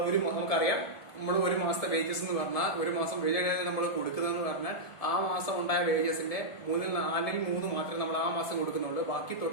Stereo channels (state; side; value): late; right; 1.5 ms